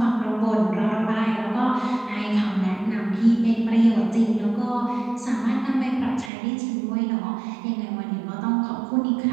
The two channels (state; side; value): drops out; left; at 6.3 s